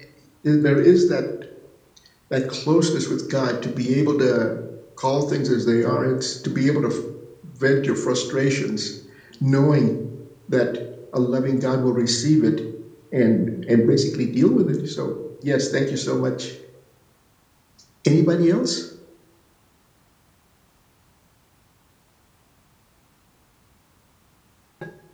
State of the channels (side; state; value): both; identical; correlation 1.00